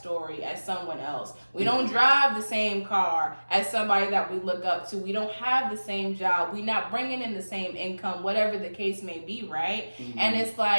as someone else. We don't drive the same car as somebody that we look up to. We don't have the same job. We're not bringing in the same income, whatever the case may be, right? And it's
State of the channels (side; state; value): both; inverted; correlation -1.00